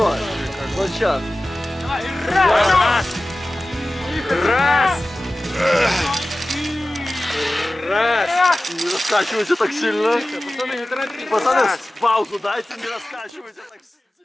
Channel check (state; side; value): normal; both; correlation 0.96